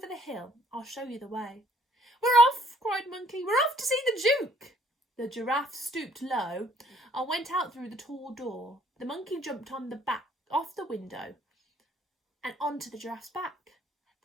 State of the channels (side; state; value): both; normal; correlation 0.62